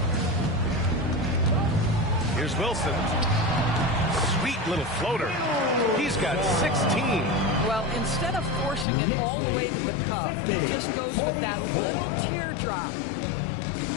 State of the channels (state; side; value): drops out; right; at 8.8 s